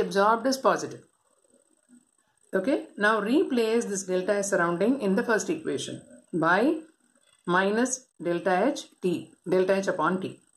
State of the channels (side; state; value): both; identical; correlation 1.00